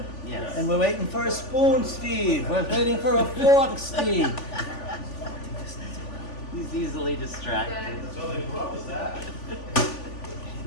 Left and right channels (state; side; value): late; right; 3.4 ms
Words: Yes. And we're waiting for a spoon, Steve. We're waiting for a fork, Steve. He's easily distracted. That's all they brought was that.